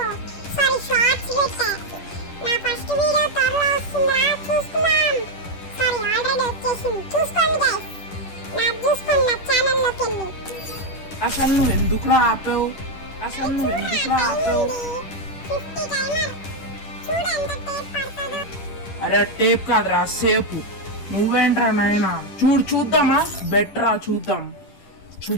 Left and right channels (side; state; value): right; late; 10 ms